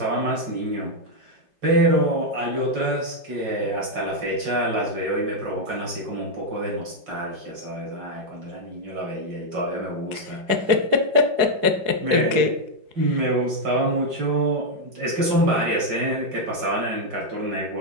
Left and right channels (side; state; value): left; late; 4.8 ms